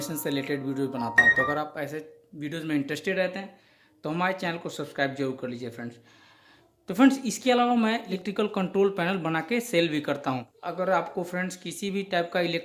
से रिलेटेड वीडियोस बनाता हूँ, तो अगर आप ऐसे वीडियोस में इंटरेस्टेड रहते हैं तो हमारे चैनल को सब्सक्राइब जरूर कर लीजिए फ्रेंड्स। तो फ्रेंड्स इसके अलावा मैं इलेक्ट्रिकल कंट्रोल पैनल बना के सेल भी करता हूँ। अगर आपको फ्रेंड्स किसी भी टाइप का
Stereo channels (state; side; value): identical; both; correlation 1.00